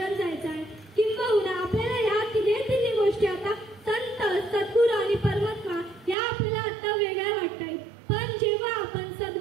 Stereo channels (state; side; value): drops out; left; at 6.2 s